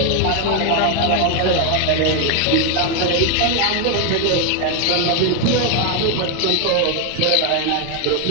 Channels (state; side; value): different; both; correlation 0.01